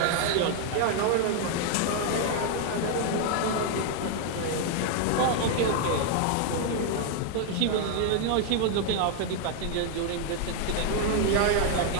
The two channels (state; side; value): different; both; correlation 0.00